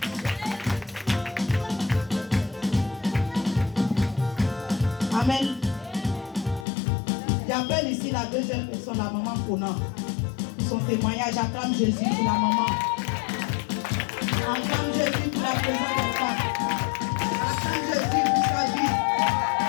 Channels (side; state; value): right; drops out; at 6.7 s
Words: Amen. J'appelle ici la deuxième personne, la maman Kona. Son témoignage, acclame Jésus pour la maman. Acclame Jésus pour la présence de femme. Acclame Jésus pour sa vie.